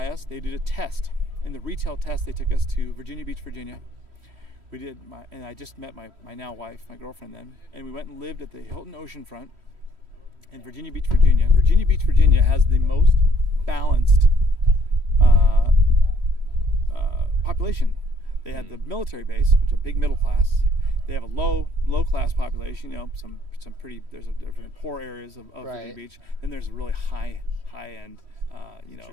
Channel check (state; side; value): late; left; 3.1 ms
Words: us. They did a test. In the retail test, they took us to Virginia Beach, Virginia. And I just met my now wife, my girlfriend then, and we went and lived at the Hilton Oceanfront in Virginia Beach, Virginia. Virginia Beach, Virginia has the most balanced population. They had the military base, which is a big middle class. They have a low class population. You know, some pretty. There's different poor areas of Virginia Right. Beach. Then there's a really high end,